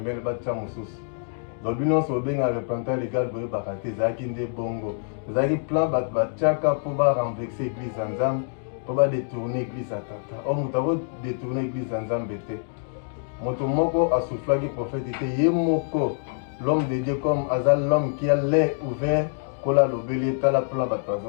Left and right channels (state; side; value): silent; right; digital silence